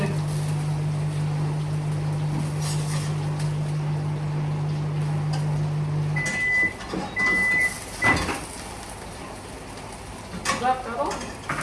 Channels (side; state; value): both; identical; correlation 1.00